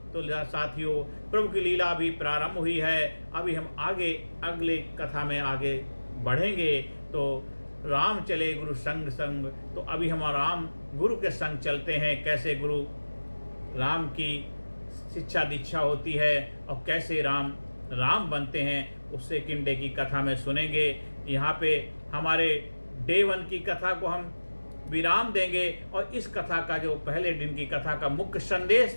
तो साथियों, प्रभु की लीला भी प्रारंभ हुई है। अभी हम आगे अगले कथा में आगे बढ़ेंगे। तो राम चले गुरु संग संग, तो अभी हम राम गुरु के संग चलते हैं। कैसे गुरु राम की शिक्षा दीक्षा होती है और कैसे राम राम बनते हैं, उससे किन डे की कथा में सुनेंगे। यहाँ पे हमारे डे 1 की कथा को हम विराम देंगे। और इस कथा का जो पहले दिन की कथा का मुख्य संदेश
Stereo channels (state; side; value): inverted; both; correlation -1.00